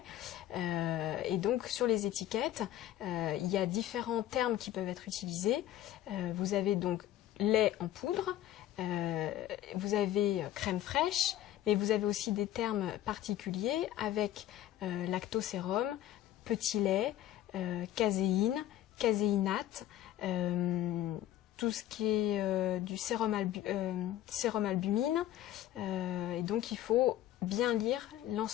Et donc sur les étiquettes, il y a différents termes qui peuvent être utilisés. Vous avez donc lait en poudre, vous avez crème fraîche, mais vous avez aussi des termes particuliers avec lactosérum, petit lait, caséine, caséinate, tout ce qui est du sérum albumine. Et donc il faut bien lire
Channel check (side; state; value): right; quieter; 12.9 dB